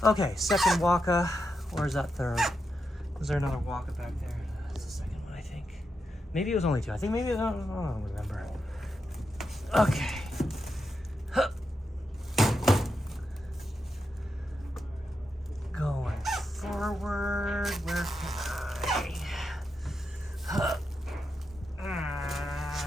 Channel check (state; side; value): normal; both; correlation 0.86